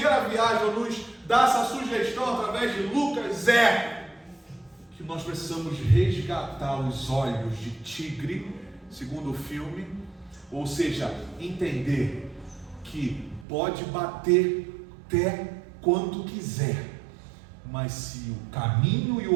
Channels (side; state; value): left; drops out; at 13.5 s